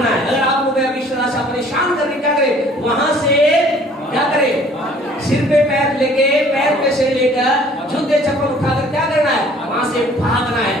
है। अगर आपको कोई अभिलाषा परेशान कर रही, क्या करे? वहां से क्या करे? सिर पे पैर लेके, पैर पे सिर लेकर, जूते चप्पल उठाकर क्या करना है? वहां से भागना है,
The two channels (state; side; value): normal; both; correlation 0.55